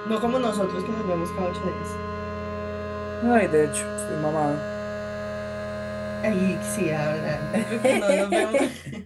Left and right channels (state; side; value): identical; both; correlation 1.00